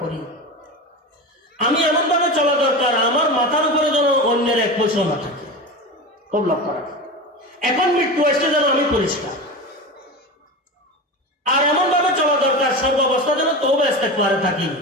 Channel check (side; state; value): both; normal; correlation 0.25